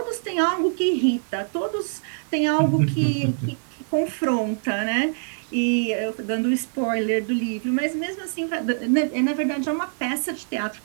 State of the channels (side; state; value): left; silent; digital silence